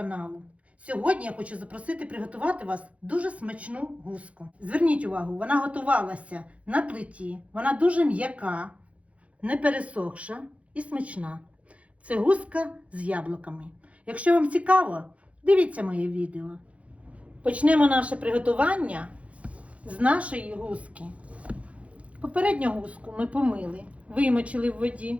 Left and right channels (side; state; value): left; late; 0.064 ms